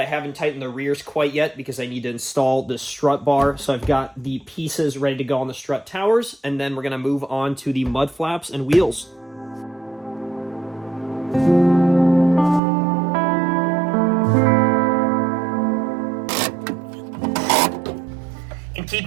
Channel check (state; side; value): drops out; left; at 12.6 s